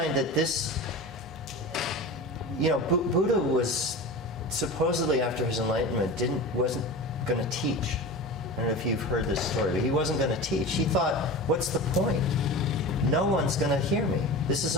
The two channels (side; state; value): both; normal; correlation 0.31